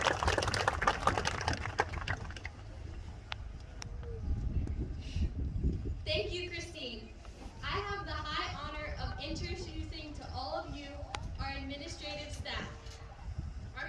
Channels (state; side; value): identical; both; correlation 1.00